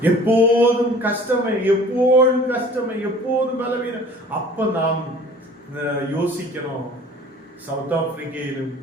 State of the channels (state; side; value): normal; both; correlation 0.48